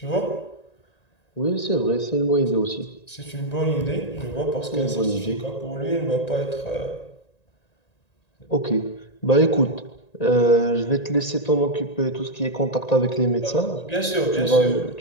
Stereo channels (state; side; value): late; right; 1.9 ms